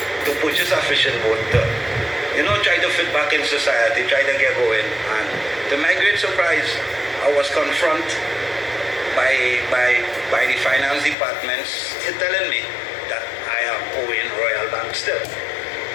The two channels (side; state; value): right; drops out; at 11.2 s